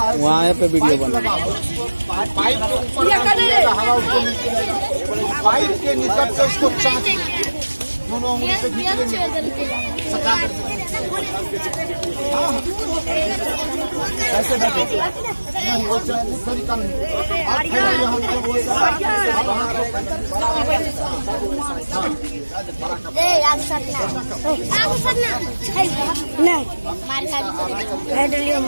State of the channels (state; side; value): inverted; both; correlation -1.00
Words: वहाँ पे वीडियो बना। पाइप के ऊपर हवा उसको नीचे, पाइप के निकट से उसको चाँच दोनों उंगली से खींच लेंगे, सटा करके। ऐसे नहीं, वो तरीका नहीं। आप फैलाइए, हम